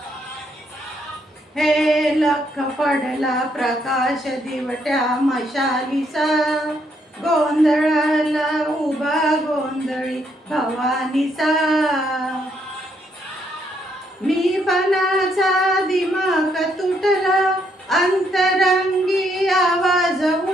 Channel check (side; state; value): both; normal; correlation 0.73